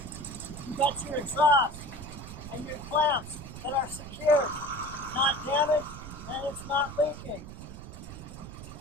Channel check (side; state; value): right; noise; rumble, 12 dB below the sound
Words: You got your exhaust and your clamps that are secured, not damaged, and it's not leaking.